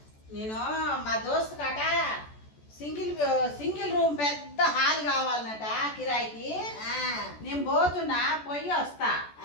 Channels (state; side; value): late; right; 14 ms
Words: నేను మా దోస్తు కట సింగిల్ సింగిల్ రూమ్ పెద్ద హాల్ కావాలన్నట కిరాయికి. నేను పోతున్నా, పోయి వస్తా.